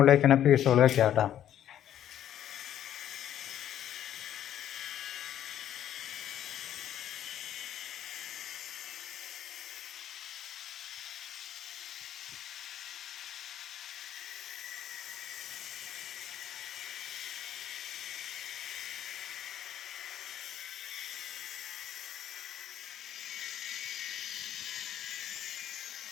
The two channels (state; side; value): quieter; right; 11.0 dB